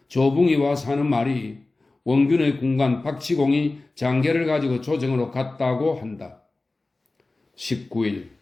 조붕이 와서 하는 말이 원균의 군관 박치공이 장계를 가지고 조정으로 갔다고 한다. 19일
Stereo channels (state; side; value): quieter; right; 3.2 dB